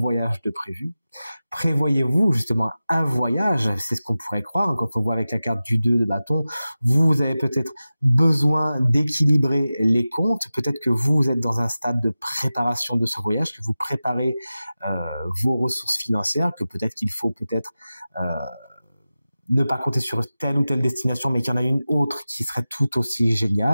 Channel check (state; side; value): inverted; both; correlation -0.95